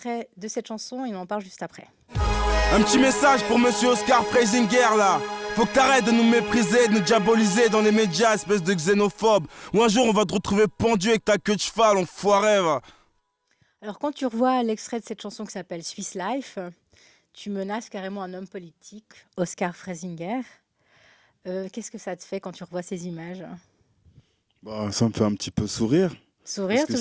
de cette chanson et on en parle juste après. Un petit message pour monsieur Oscar Freisinger là. Faut que t'arrêtes de nous mépriser, de nous diaboliser dans les médias, espèce de xénophobe. Ou un jour on va te retrouver pendu avec ta queue de cheval, enfoiré va. Alors quand tu revois l'extrait de cette chanson qui s'appelle Swiss Life, tu menaces carrément un homme politique, Oscar Freisinger. Qu'est-ce que ça te fait quand tu revois ces images? Bah, ça me fait un petit peu sourire. Parce Sourire, que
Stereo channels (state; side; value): identical; both; correlation 1.00